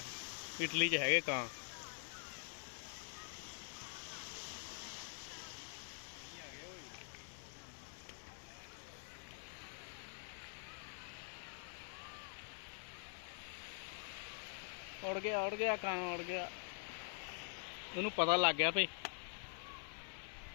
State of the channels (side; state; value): right; silent; digital silence